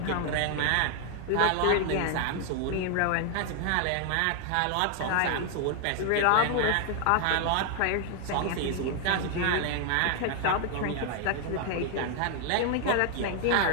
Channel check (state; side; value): different; both; correlation 0.00